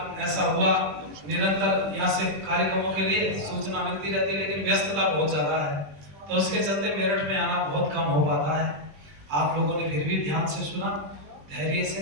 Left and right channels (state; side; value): late; left; 20 ms